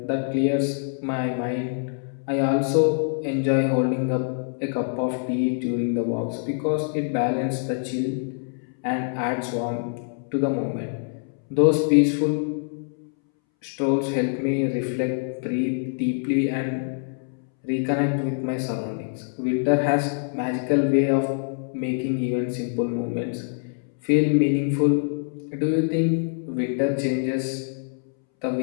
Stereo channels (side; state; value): right; silent; 62 dB below the other